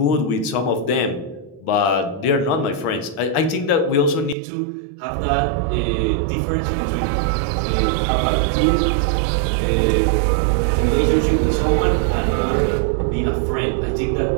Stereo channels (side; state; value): left; drops out; at 4.4 s